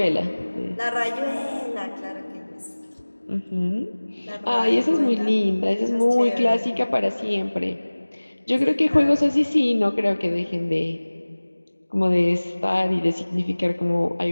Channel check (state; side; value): inverted; both; correlation -1.00